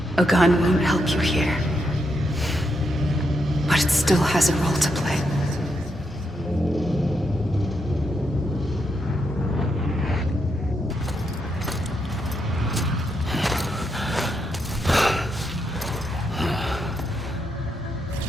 A gun won't help you here. But it still has a role to play.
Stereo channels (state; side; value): normal; both; correlation 0.81